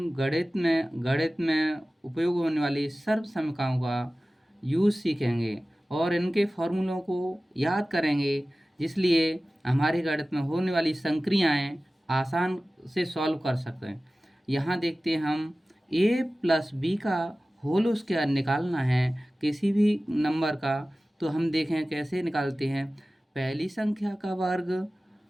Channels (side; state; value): both; normal; correlation 0.97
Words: गणित में उपयोग होने वाली सर्वसमीकरणों का यूज़ सीखेंगे और इनके फॉर्मूलों को याद करेंगे, जिसलिए हमारे गणित में होने वाली संक्रियाएं आसान से सॉल्व कर सकें। यहाँ देखते हैं हम a प्लस बी का होल स्क्वायर निकालना है किसी भी नंबर का। तो हम देखें कैसे निकालते हैं। पहली संख्या का वर्ग